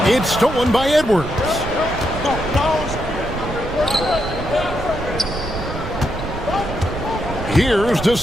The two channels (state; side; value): noise; right; rumble, 8 dB below the sound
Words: It's stolen by Edwards. Here's De